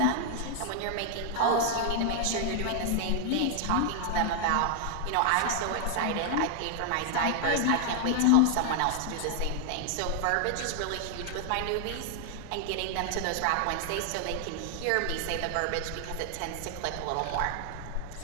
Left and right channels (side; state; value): both; different; correlation 0.00